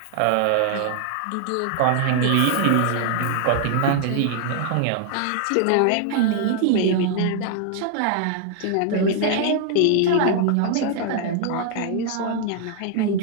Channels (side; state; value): both; different; correlation 0.00